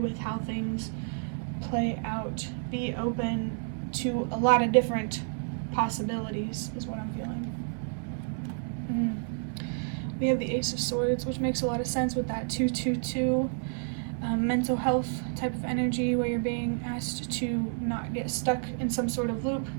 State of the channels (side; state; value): left; silent; 58 dB below the other